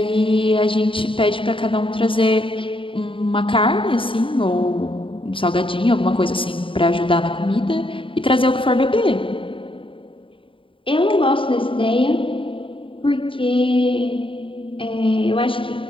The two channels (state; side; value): late; right; 0.25 ms